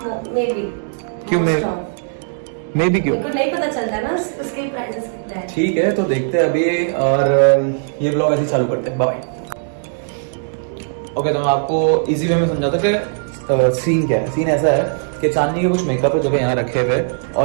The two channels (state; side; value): silent; left; digital silence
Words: May be. क्यों मे भी क्यों? मेरे को नहीं पता चलता ना उसके प्राइसेस कितने हैं। ठीक है, तो देखते हैं अभी, और ये ब्लॉग ऐसे चालू करते हैं। बाय। ओके, तो मैं आपको इजी वे में समझाता कि सीन क्या है। सीन ऐसा है कि चांदनी के कुछ मेकअप है जो कि यहाँ रखे हुए,